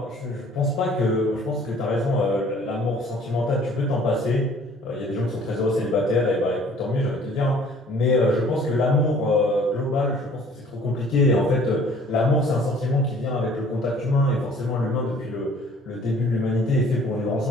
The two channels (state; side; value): normal; both; correlation 0.54